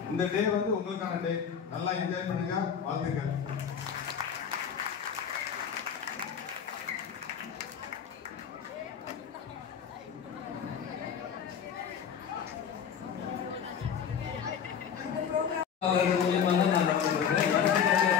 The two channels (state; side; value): quieter; right; 7.6 dB